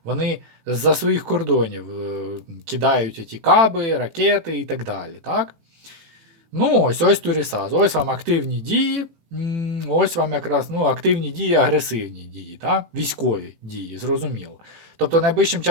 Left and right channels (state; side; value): late; left; 18 ms